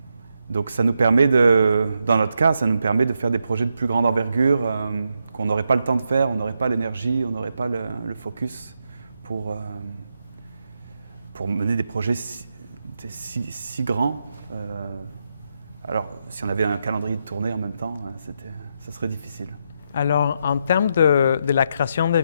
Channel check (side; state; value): both; inverted; correlation -0.82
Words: Donc ça nous permet dans notre cas, ça nous permet de faire des projets de plus grande envergure qu'on n'aurait pas le temps de faire, on n'aurait pas l'énergie, on n'aurait pas le focus pour mener des projets si grands. Alors, si on avait un calendrier de tournée en même temps, ça serait difficile. Alors, en termes de la création de